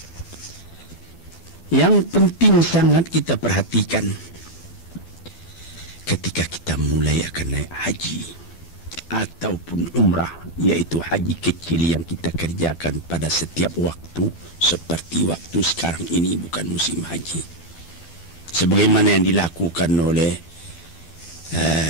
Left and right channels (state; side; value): late; right; 12 ms